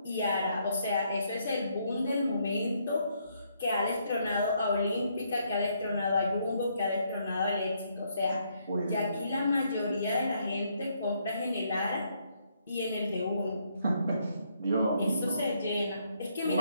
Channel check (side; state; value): both; inverted; correlation -0.73